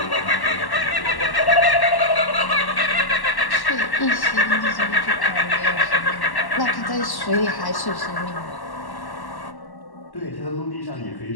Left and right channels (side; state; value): right; late; 1.1 ms